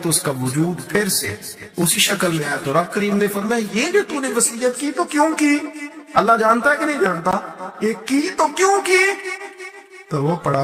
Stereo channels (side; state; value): both; identical; correlation 1.00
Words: تو اس کا وجود پھر سے اسی شکل میں آیا۔ تو رب کریم نے فرمایا یہ جو تو نے وصیت کی تو کیوں کی؟ اللہ جانتا ہے کہ نہیں جانتا؟ یہ کی تو کیوں کی؟ تو وہ پڑا